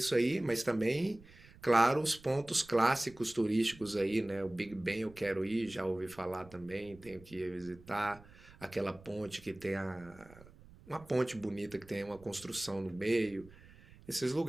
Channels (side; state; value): right; noise; rumble, 22 dB below the sound